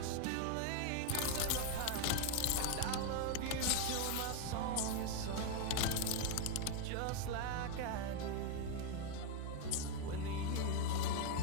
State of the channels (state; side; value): different; both; correlation 0.01